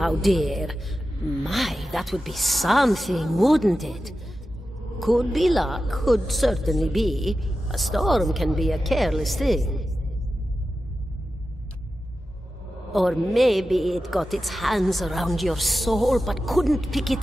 dear? My, that would be something, wouldn't it? Could be luck, could certainly be. A storm can be a careless thing. Or maybe it got its hands around your soul but couldn't pick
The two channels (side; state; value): both; normal; correlation 0.92